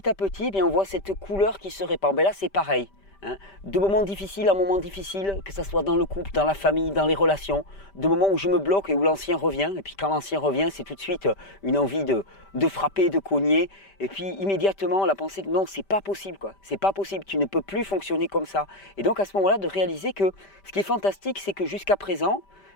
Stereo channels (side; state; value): right; late; 5.1 ms